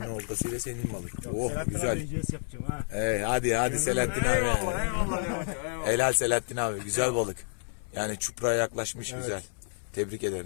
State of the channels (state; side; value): silent; right; 58 dB below the other